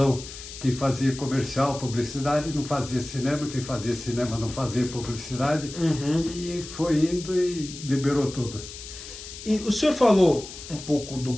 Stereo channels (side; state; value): left; noise; hiss, 13 dB below the sound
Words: Quem fazia comercial, publicidade, não fazia cinema, quem fazia cinema não fazia publicidade, e foi indo e liberou tudo. E o senhor falou um pouco do